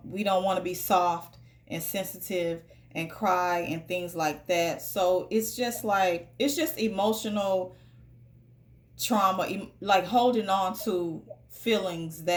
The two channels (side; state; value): both; identical; correlation 1.00